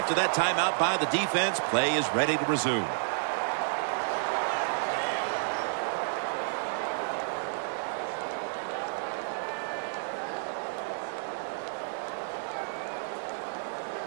that timeout by the defense, play is ready to resume.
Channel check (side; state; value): left; silent; digital silence